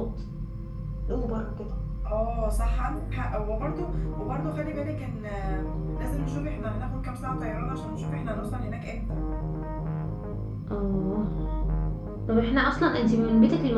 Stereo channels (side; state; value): both; identical; correlation 1.00